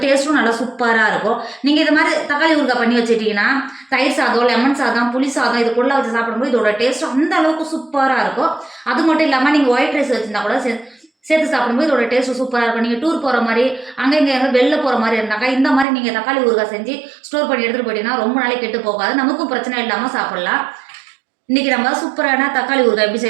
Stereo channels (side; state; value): left; drops out; at 15.9 s